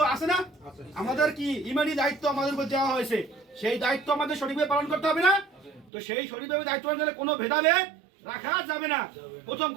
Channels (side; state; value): left; drops out; at 5.9 s